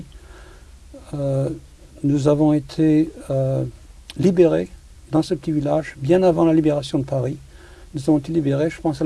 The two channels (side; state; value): both; identical; correlation 1.00